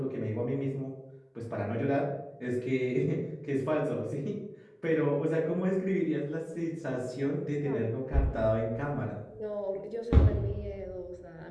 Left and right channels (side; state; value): both; identical; correlation 1.00